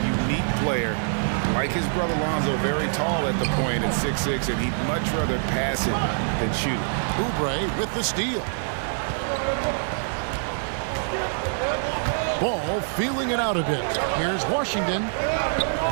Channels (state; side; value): silent; left; 62 dB below the other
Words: unique player. Like his brother Lonzo, very tall at the point at 6'6", and he'd much rather pass it than shoot it. Oubre with the steal. Ball feeling it out a bit. Here's Washington.